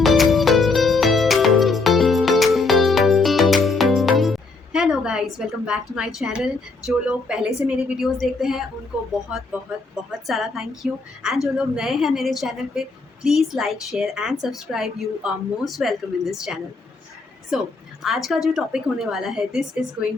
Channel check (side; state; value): right; quieter; 3.8 dB